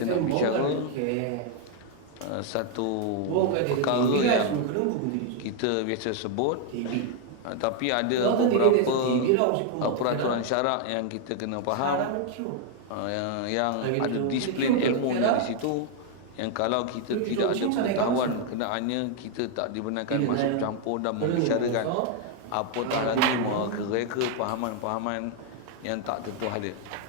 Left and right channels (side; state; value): both; different; correlation 0.00